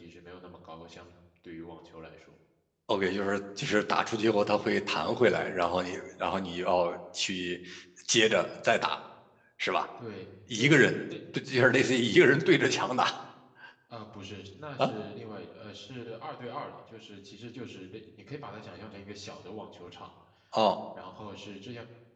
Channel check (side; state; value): both; identical; correlation 1.00